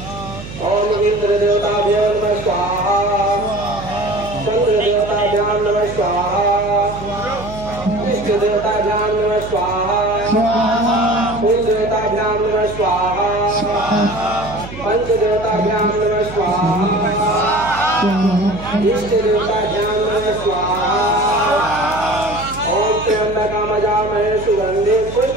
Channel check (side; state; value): right; noise; hum, 12 dB below the sound